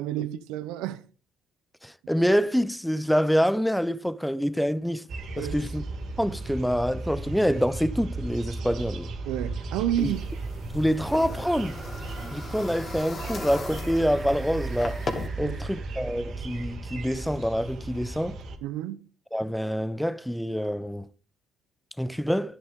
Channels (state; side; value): normal; both; correlation 0.92